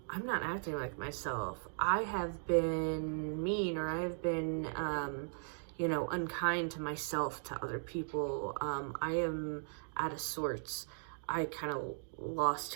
I'm not acting like myself. I have been mean, or I have been, unkind to myself, to other people. I am out of sorts. I kind of lost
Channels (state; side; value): silent; left; digital silence